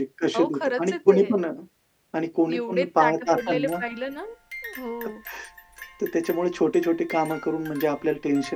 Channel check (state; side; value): identical; both; correlation 1.00